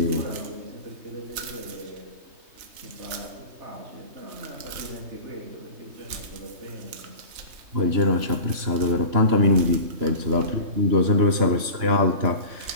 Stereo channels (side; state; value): left; late; 3.2 ms